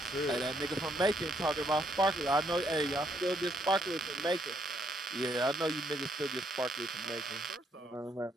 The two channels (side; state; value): both; normal; correlation 0.72